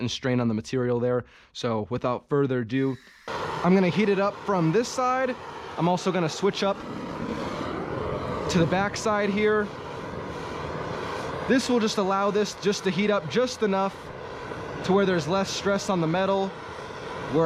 strain on the material there. So without further ado, I'm going to heat it up from this side. I'm also going to switch up to the back side here. This will just allow this just to heat up just enough to where there's less stress on the metal,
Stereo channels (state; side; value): identical; both; correlation 1.00